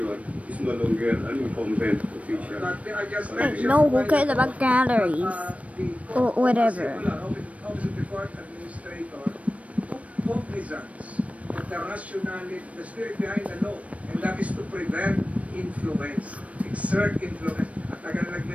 is no longer an incumbent official. But I just Hey, mentioned no, who why cares the- about galleries? the Or whatever. Office of the Court Administrator took cognizance of the rationality, the spirit behind the law, and that is to prevent influence, exert influence. At tagal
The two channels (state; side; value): late; left; 0.065 ms